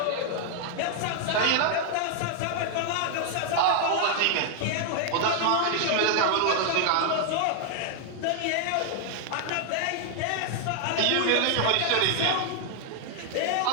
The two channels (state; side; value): different; both; correlation 0.00